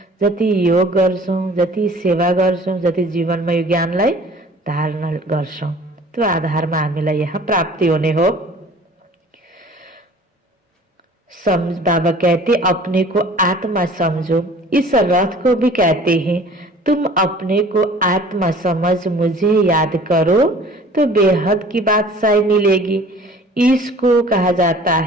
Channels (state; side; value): normal; both; correlation 0.49